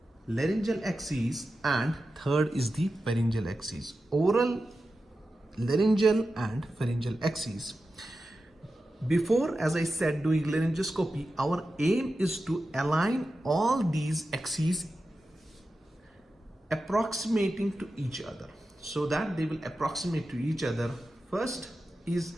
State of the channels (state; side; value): normal; both; correlation 0.92